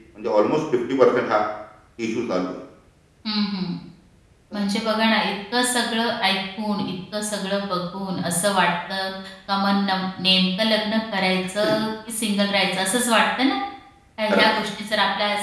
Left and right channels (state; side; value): identical; both; correlation 1.00